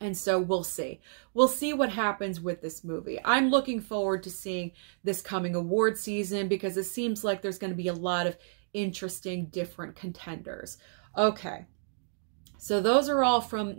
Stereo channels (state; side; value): silent; left; digital silence